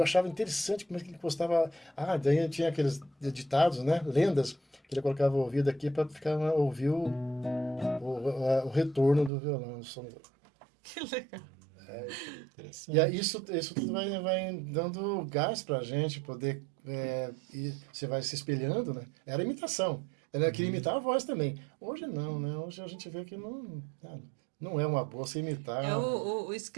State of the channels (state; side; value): drops out; left; at 9.3 s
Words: achava interessante como é que ele postava. Ah, daí tinha aqueles ditados, né? Lendas, que ele colocava o ouvido aqui para ficar ouvir o retorno do violão. O som. Que legal. E aí Interessante. isso tudo vai dando gás para a gente poder. E você vai se espelhando, né? Era imitação. Ela queria Uhum. imitar a voz também. Hoje não, né? Hoje a gente vê que não é uma boa se É imitar. o